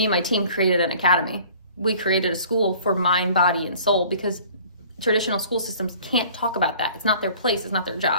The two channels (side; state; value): both; inverted; correlation -0.49